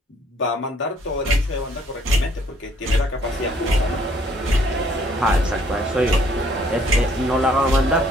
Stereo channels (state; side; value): normal; both; correlation 0.63